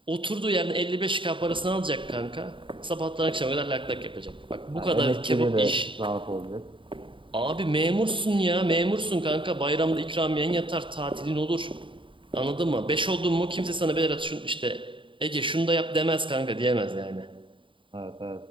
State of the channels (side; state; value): left; late; 0.24 ms